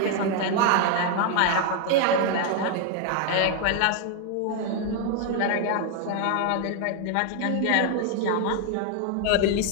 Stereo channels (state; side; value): different; both; correlation 0.01